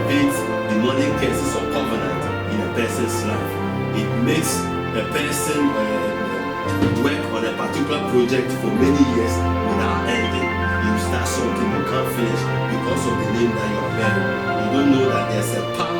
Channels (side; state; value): both; identical; correlation 1.00